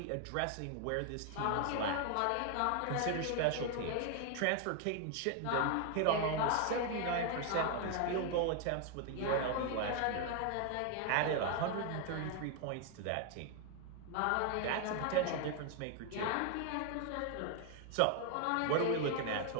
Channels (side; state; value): both; different; correlation 0.00